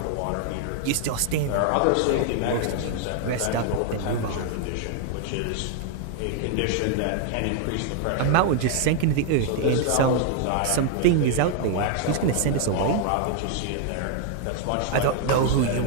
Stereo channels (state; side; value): different; both; correlation 0.00